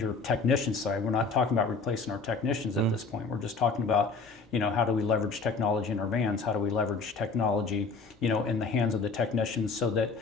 technician side, we're not talking about replacing our technicians at this point. We're just talking about, how do we leverage technology in our vans? How do we leverage technology, in the hands of the technicians so that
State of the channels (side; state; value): right; quieter; 4.3 dB